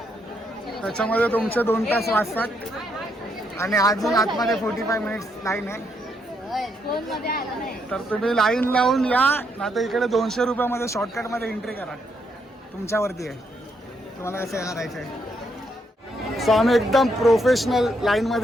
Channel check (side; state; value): both; normal; correlation 0.76